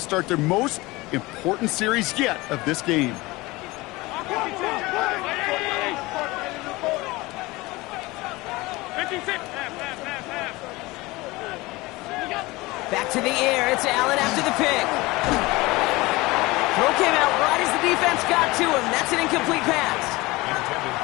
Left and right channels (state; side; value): quieter; right; 21.6 dB